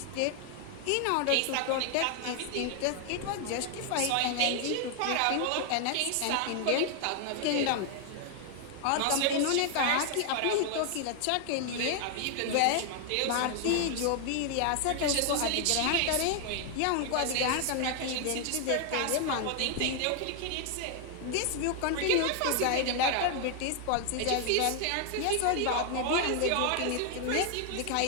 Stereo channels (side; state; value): both; different; correlation 0.00